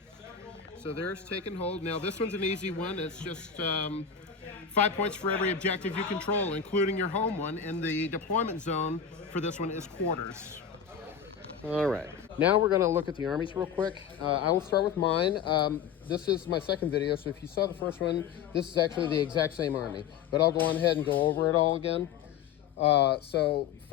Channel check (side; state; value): right; quieter; 7.6 dB